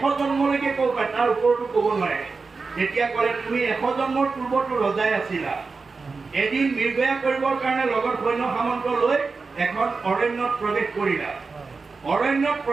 জন্মলৈকে ক'ব পাৰে, তাৰ ওপৰতো ক'ব নোৱাৰে। তেতিয়া ক'লে তুমি 100 জন্মৰ পূৰ্বতো ৰজাই আছিলা। এদিন নিৰ্ভয়া কৰিবৰ কাৰণে লগত সৈন্য সামন্ত লৈ এখন অৰণ্যত প্ৰৱেশ কৰিলা। অৰণ্যত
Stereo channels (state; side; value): quieter; left; 4.4 dB